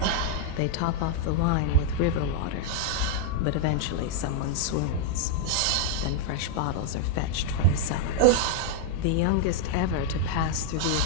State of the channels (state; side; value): different; both; correlation -0.01